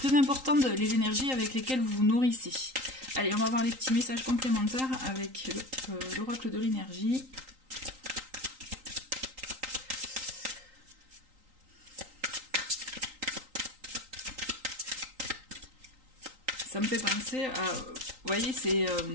important les énergies avec lesquelles vous vous nourrissez. Allez, on va voir les petits messages complémentaires avec l'oracle de l'énergie. Ça me fait penser à... Vous voyez, c'est...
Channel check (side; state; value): left; late; 3.8 ms